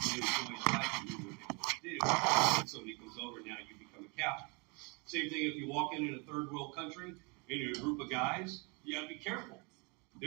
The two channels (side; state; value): left; quieter; 31.0 dB